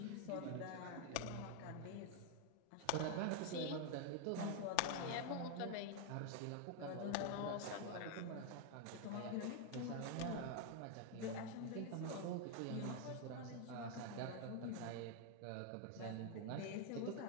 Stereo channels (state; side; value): different; both; correlation 0.01